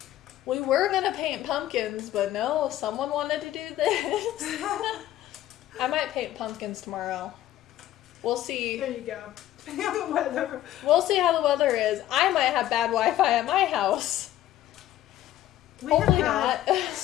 We were going to paint pumpkins, but no, someone wanted to do this. I might paint pumpkins tomorrow. We'll see. There you go. Depending on the weather. We'll see how the weather is. I might have bad Wi-Fi at my house. We Hopefully have not. had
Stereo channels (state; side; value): quieter; right; 13.4 dB